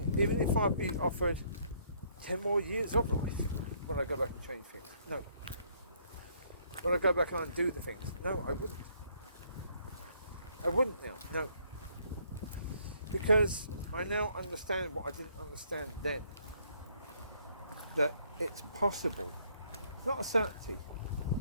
even if I'd be offered 10 more years of life. Would I go back and change things? No. Would I go back and undo the things? No, I wouldn't. I wouldn't now, no. Because I now understand what I didn't understand then. That it's possible, it's not a certainty,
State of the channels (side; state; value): both; inverted; correlation -0.66